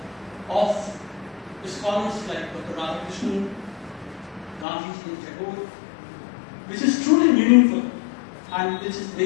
of scholars like Dr. Radhakrishnan, Gandhiji and Tagore, which is truly meaningful and which is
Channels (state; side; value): drops out; right; at 4.7 s